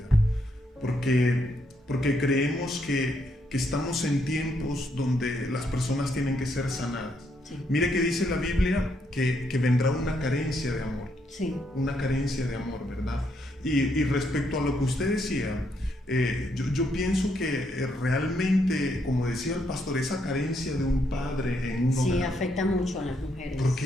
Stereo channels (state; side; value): normal; both; correlation 0.75